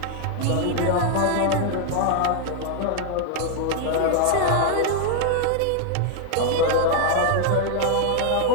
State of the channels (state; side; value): different; both; correlation 0.01